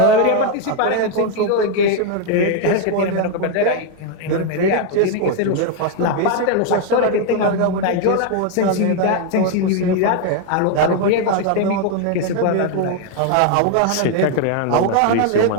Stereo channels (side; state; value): both; different; correlation 0.01